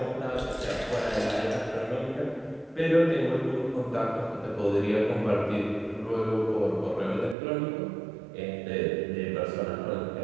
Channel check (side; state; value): left; drops out; at 7.4 s